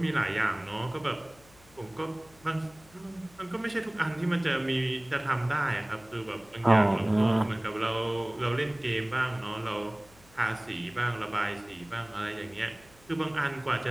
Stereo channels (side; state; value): left; noise; hum, 26 dB below the sound